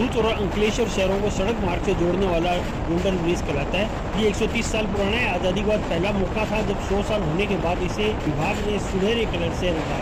और अंकलेश्वर शहरों को सड़क मार्ग से जोड़ने वाला गोल्डन ब्रिज कहलाता है। ये 130 साल पुराना है। आज़ादी के बाद पहला मौका था जब 100 साल होने के बाद इसे विभाग ने सुनहरे कलर से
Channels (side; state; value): both; identical; correlation 1.00